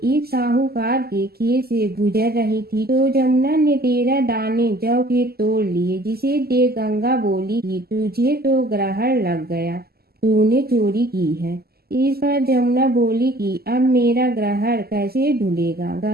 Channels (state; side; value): late; left; 0.45 ms